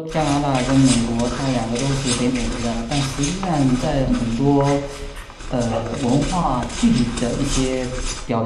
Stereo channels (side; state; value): both; identical; correlation 1.00